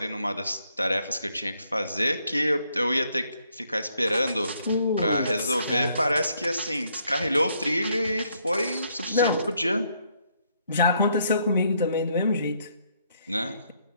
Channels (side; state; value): both; inverted; correlation -0.71